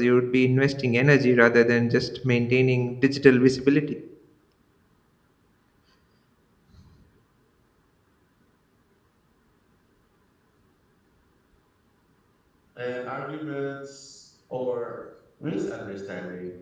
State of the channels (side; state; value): both; identical; correlation 1.00